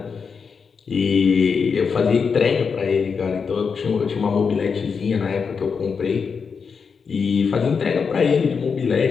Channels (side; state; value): right; quieter; 5.7 dB